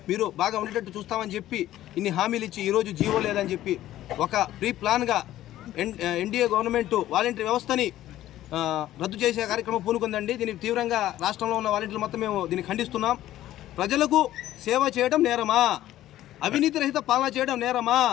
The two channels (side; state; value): right; quieter; 13.8 dB